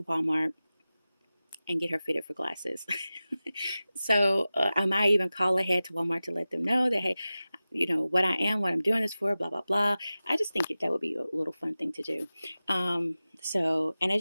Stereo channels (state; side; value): inverted; both; correlation -0.96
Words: Walmart and get her fitted for glasses. So I might even call ahead to Walmart to let them know that, hey, you know, what I am, what I'm doing this for, blah, blah, blah. I just think that would be a little fun thing to do. So, and